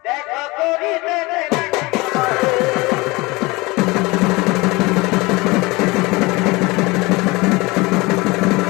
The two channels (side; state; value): right; quieter; 23.4 dB